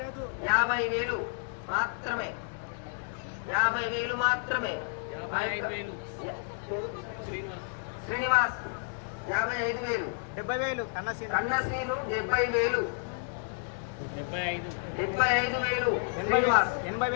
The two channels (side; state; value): right; silent; 57 dB below the other